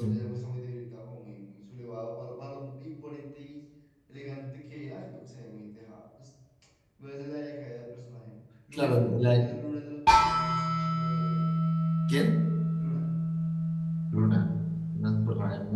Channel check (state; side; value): identical; both; correlation 1.00